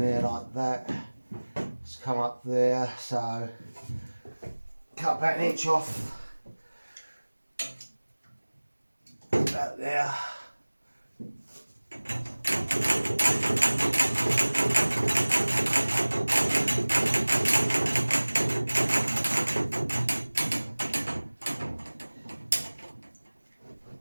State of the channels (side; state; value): both; inverted; correlation -1.00